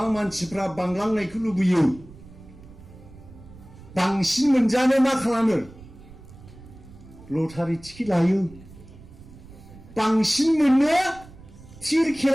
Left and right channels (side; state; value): right; noise; rumble, 20 dB below the sound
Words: मानसिफ्रा बांलांनायखौ लुबैयो बांसिन मोनजानो मा खालामो लटारि टिकेट लायो बांसिन मोननो थिर